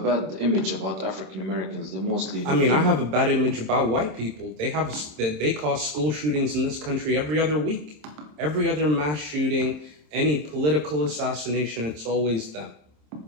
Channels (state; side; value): late; left; 27 ms